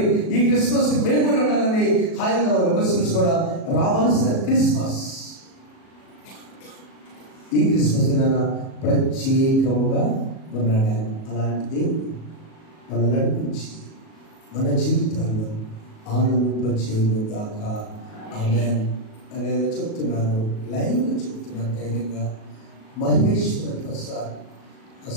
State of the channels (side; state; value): right; late; 37 ms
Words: ఈ క్రిస్మస్ కి మేము కూడా ఉండాలని హైందవ ముస్లిమ్స్ కూడా రావాల్సిన క్రిస్మస్. ఈ క్రిస్మస్ దినాన ప్రత్యేకముగా ఉన్నాడు ఆయన. అలాంటి దేవుడు మనం నడిపించి మన జీవితాల్లో ఆనందింపచేయును గాక. ఆమేన్. అనేది చెప్తున్నాను, లైవ్లో చెప్తున్నాను ధైర్యంగా. మహేశ్వర ప్రసాద్